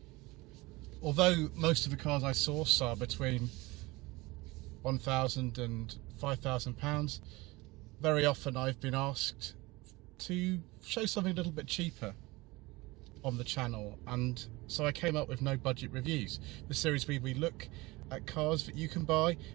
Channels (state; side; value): quieter; left; 22.1 dB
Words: Although most of the cars I source are between £1,000 and £5,000, very often I've been asked to show something a little bit cheaper on the channel, and so I came up with No Budget Reviews, the series where we look at cars that you can buy